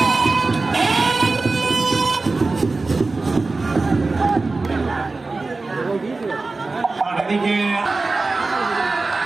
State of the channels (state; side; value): quieter; left; 3.6 dB